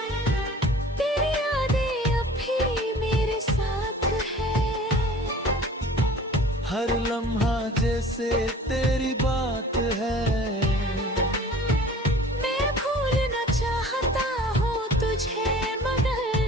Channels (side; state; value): both; normal; correlation 0.46